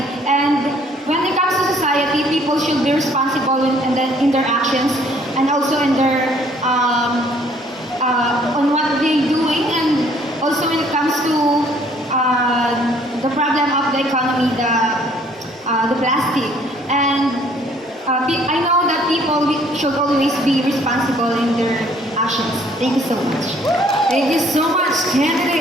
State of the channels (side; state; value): both; normal; correlation 0.60